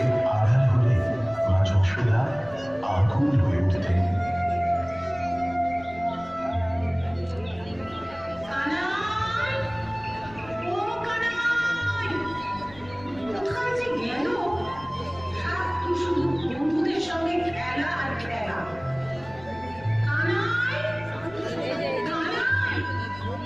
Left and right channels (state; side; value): noise; left; rumble, 21 dB below the sound